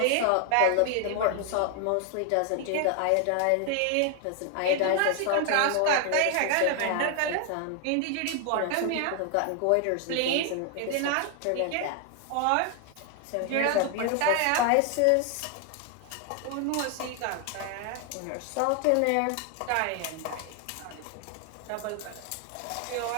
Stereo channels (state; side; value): different; both; correlation 0.00